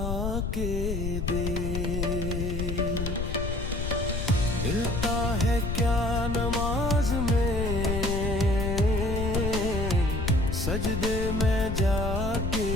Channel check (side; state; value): left; noise; rumble, 2 dB below the sound